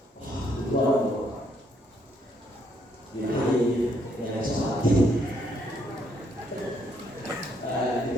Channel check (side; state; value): both; normal; correlation 0.71